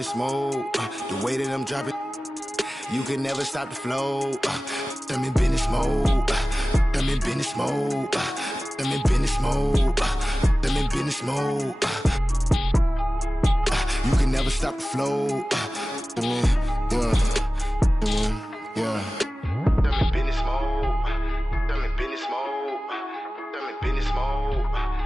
mode. The way that I'm dropping. You can never stop the flow. I'm in business mode. I'm in business mode. I'm in business mode. I'm in business mode. You can never stop the flow. Yeah. I'm in business mode. I'm in business mode. I'm in business mode.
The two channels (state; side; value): normal; both; correlation 0.96